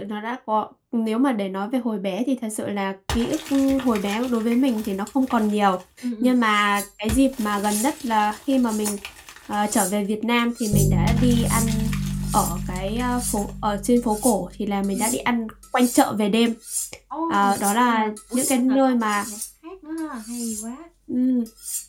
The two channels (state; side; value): identical; both; correlation 1.00